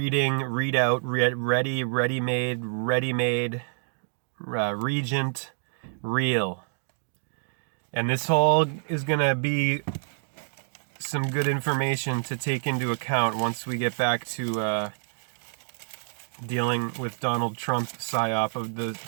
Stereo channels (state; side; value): silent; left; digital silence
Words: read out, ready, ready-made, regent, real. And this all is going to be some good information to take into account once we get back to dealing with Donald Trump psyop of the